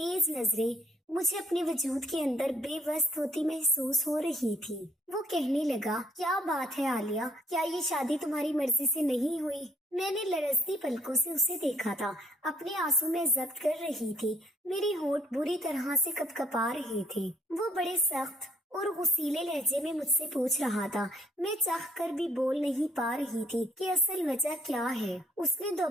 नजरें मुझे अपने वजूद के अंदर बेबस होती महसूस हो रही थी। वो कहने लगा, क्या बात है आलिया, क्या ये शादी तुम्हारी मर्जी से नहीं हुई? मैंने लरजती पलकों से उसे देखा था। अपने आंसू में जब्त कर रही थी। मेरे होंठ बुरी तरह से कपकपा रहे थे। वो बड़े सख्त और गुस्सीले लहजे में मुझसे पूछ रहा था। मैं चाह कर भी बोल नहीं पा रही थी कि असल वजह क्या है। उसने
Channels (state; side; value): normal; both; correlation 0.64